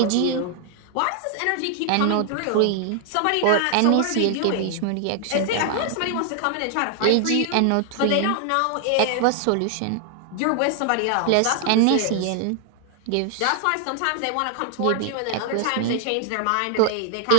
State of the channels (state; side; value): different; both; correlation 0.00